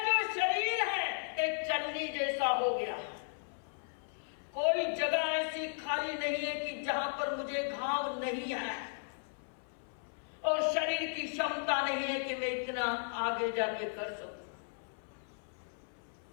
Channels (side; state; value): right; silent; 54 dB below the other